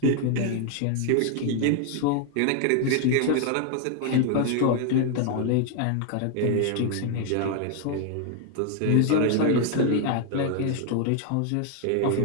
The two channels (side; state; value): both; different; correlation 0.00